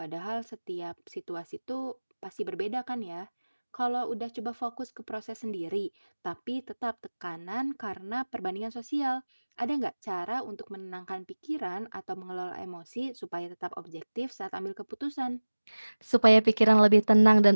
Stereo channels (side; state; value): both; inverted; correlation -1.00